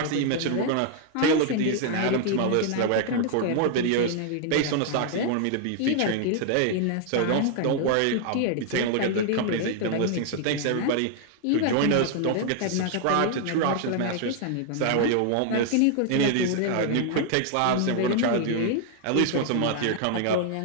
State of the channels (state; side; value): different; both; correlation 0.00